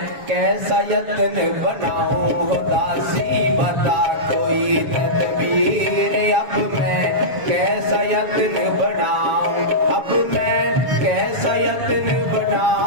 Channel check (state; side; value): late; left; 7.1 ms